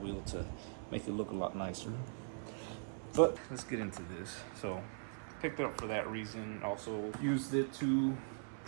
to make it look a lot nicer. But let's get into this. So picked it up for that reason. Also used it to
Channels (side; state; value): left; silent; 51 dB below the other